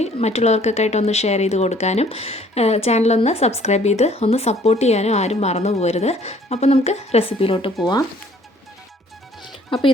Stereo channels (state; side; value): normal; both; correlation 0.58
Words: മറ്റുള്ളവർക്കൊക്കെ ആയിട്ട് ഒന്ന് ഷെയർ ചെയ്ത് കൊടുക്കാനും ചാനലൊന്ന് സബ്സ്ക്രൈബ് ചെയ്ത് ഒന്ന് സപ്പോർട്ട് ചെയ്യാനും ആരും മറന്നു പോകരുത്. അപ്പോൾ നമുക്ക് റെസിപ്പിയിലോട്ട് പോവാം. അപ്പോൾ